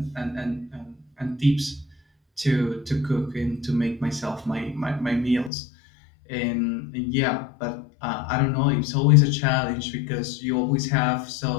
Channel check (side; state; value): right; drops out; at 5.5 s